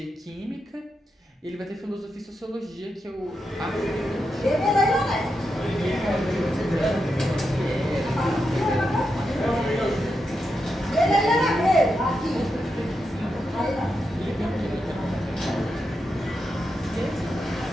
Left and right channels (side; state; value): both; normal; correlation 0.86